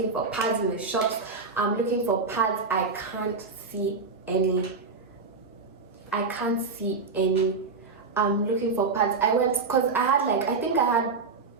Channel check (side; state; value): left; quieter; 4.4 dB